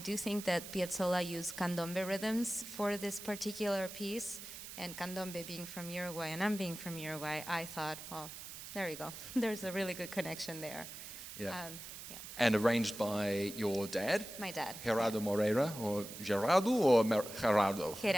do think that Piazzolla used candombe rhythms for this particular piece, and candombe being from Uruguay, and I'm being from Uruguay, I thought, well, there you go. There's a really good connection there. Yeah. And arranged by your dad? My dad. Gerardo Moreira, or Gerardo, or Gerardo?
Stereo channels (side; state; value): right; noise; hiss, 11 dB below the sound